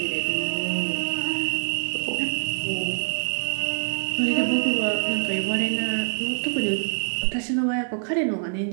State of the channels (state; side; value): silent; left; digital silence